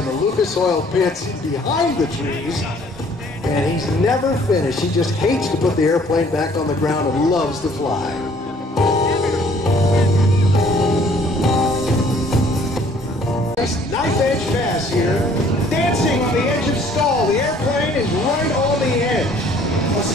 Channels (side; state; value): both; normal; correlation 0.58